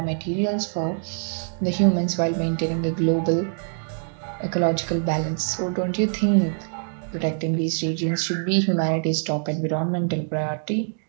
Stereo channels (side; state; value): left; silent; digital silence